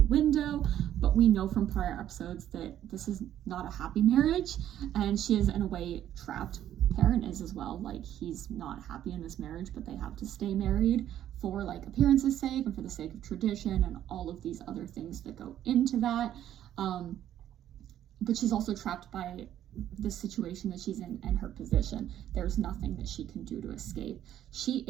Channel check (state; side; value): quieter; left; 11.4 dB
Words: window, but we know from prior episodes that this is not a happy marriage, and she is in a way trapped. Perrin is as well. He's not happy in this marriage, but they have to stay married for appearance's sake and for the sake of tradition and all of these other things that go into that. But she's also trapped by the situation that she's in and her position. There's nothing that she can do to escape. She